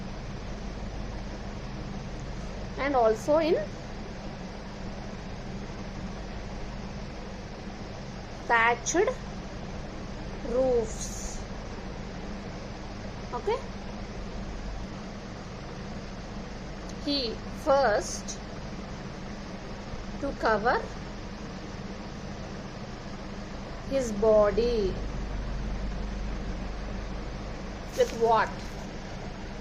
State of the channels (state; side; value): identical; both; correlation 1.00